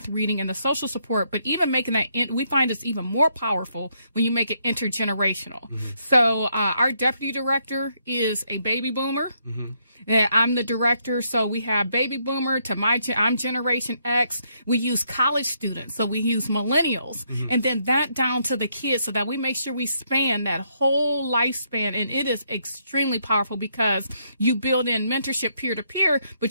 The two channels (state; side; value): inverted; both; correlation -0.74